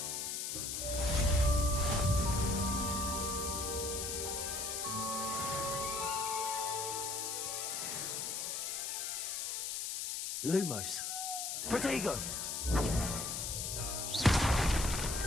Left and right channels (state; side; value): noise; left; hiss, 2 dB below the sound